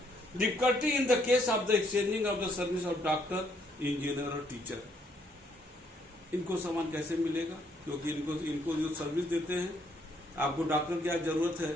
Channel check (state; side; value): normal; both; correlation 0.70